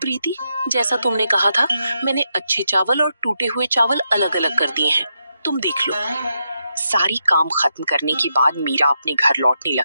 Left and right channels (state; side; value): inverted; both; correlation -0.83